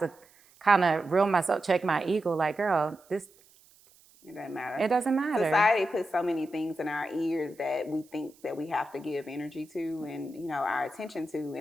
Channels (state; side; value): noise; right; hiss, 29 dB below the sound